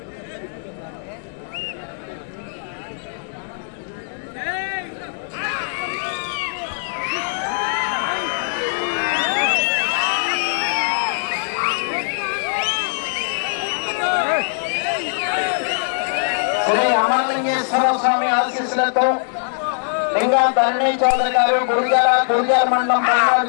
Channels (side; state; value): right; silent; digital silence